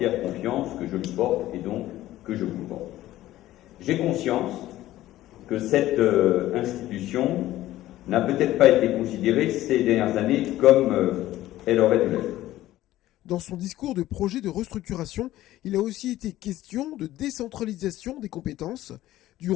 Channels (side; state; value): right; quieter; 14.9 dB